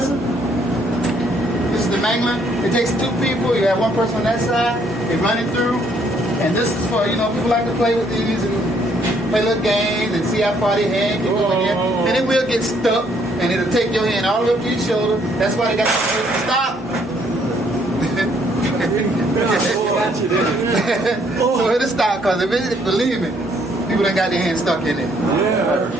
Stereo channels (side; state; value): both; normal; correlation 0.67